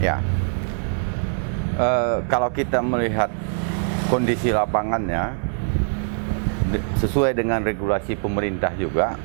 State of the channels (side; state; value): left; silent; digital silence